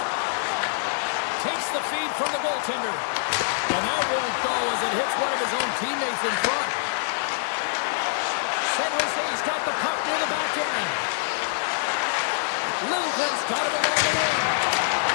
Takes the feed from the goaltender. And that won't go as it hits one of his own teammates in front. San Jose's got the puck near the back end. Littleton's got it along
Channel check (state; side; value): silent; right; digital silence